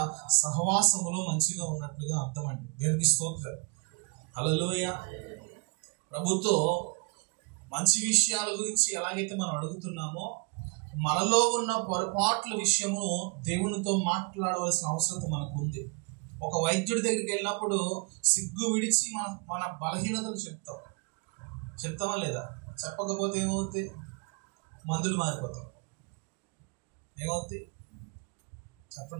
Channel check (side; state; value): left; quieter; 32.9 dB